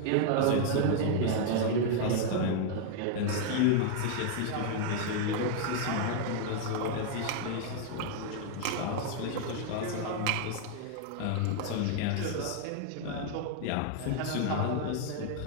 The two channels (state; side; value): different; both; correlation 0.00